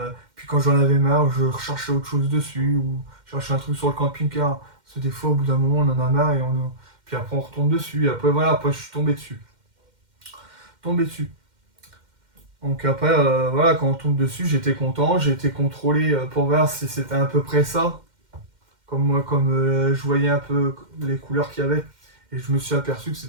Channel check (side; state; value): left; late; 2.1 ms